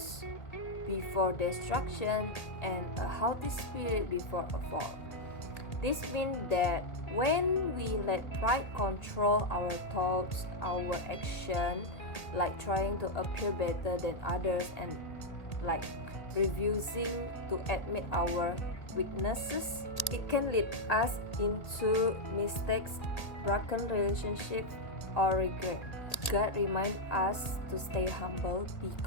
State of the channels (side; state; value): right; late; 1.8 ms